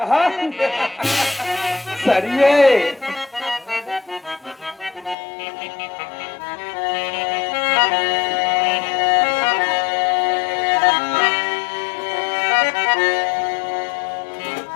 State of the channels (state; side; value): drops out; right; at 5.2 s